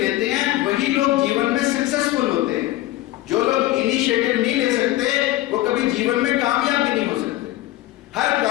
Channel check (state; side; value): quieter; right; 16.5 dB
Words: हैं वही लोग जीवन में सक्सेसफुल होते हैं। जो लोग इनिशिएटिव नहीं ले सकते वो कभी जीवन में कामयाब भी नहीं हो सकते। हर